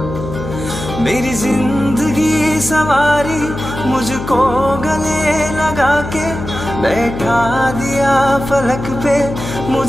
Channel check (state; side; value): noise; left; hum, 8 dB below the sound